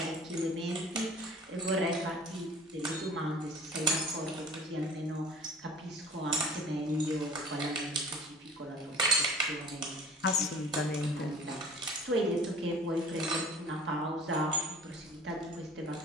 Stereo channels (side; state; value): both; normal; correlation 0.45